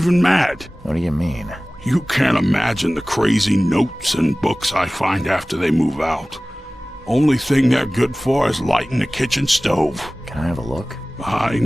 mad. What do you mean? You can't imagine the crazy notes and books I find after they move out. Only thing they're good for is lighting the kitchen stove. Can I have a look? I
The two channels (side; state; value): both; normal; correlation 0.98